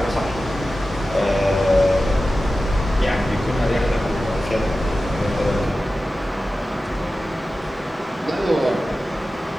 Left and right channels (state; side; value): normal; both; correlation 0.94